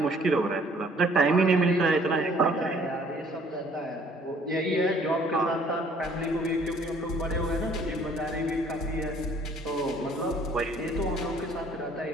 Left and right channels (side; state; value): both; normal; correlation 0.59